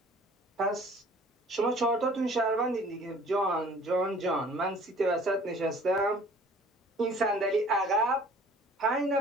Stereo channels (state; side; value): normal; both; correlation 0.51